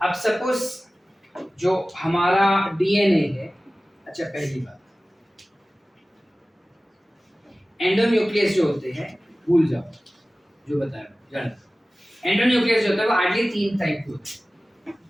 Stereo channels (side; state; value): both; normal; correlation 0.97